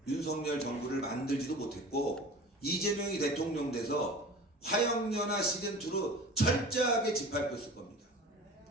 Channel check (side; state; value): both; normal; correlation 0.37